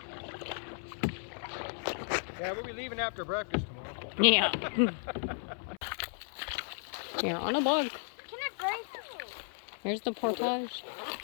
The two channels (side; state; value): right; silent; 55 dB below the other